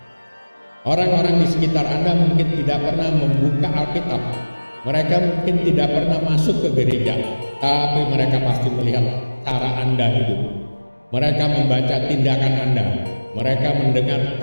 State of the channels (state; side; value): inverted; both; correlation -1.00